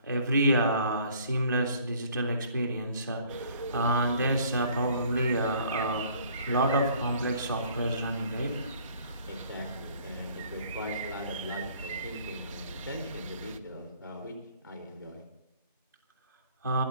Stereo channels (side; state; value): both; inverted; correlation -0.57